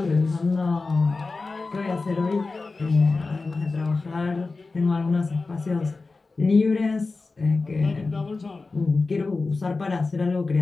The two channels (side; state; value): right; quieter; 3.8 dB